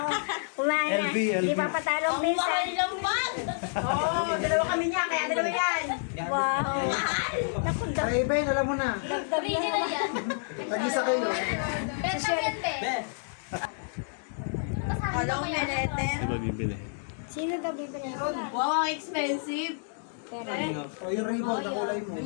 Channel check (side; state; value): right; silent; digital silence